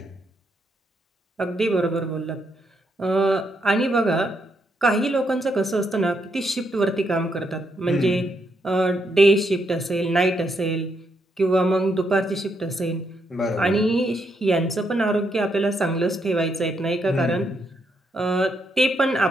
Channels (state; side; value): normal; both; correlation 0.78